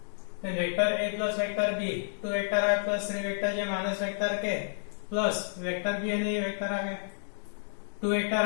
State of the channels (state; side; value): silent; right; digital silence